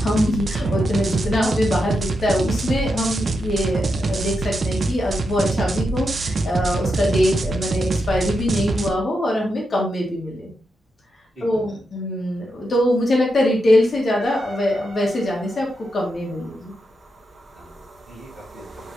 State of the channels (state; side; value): normal; both; correlation 0.85